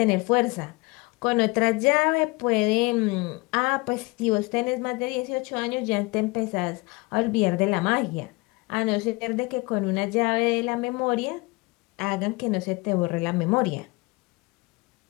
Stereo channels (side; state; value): right; quieter; 24.8 dB